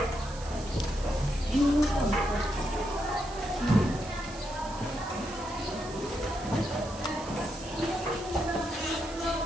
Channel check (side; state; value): right; noise; hiss, 16 dB below the sound